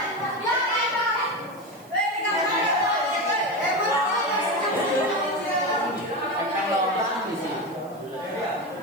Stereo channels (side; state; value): right; noise; hiss, 26 dB below the sound